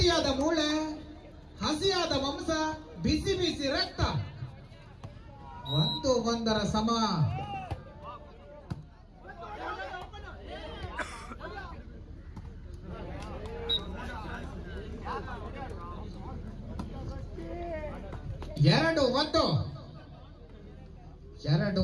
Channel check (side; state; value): both; identical; correlation 1.00